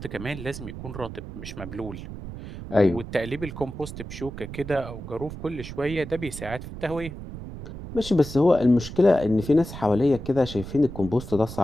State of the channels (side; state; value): right; noise; rumble, 10 dB below the sound